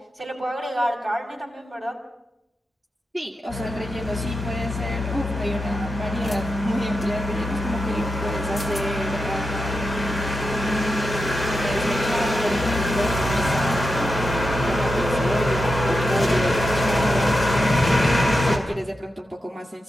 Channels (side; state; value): both; normal; correlation 0.89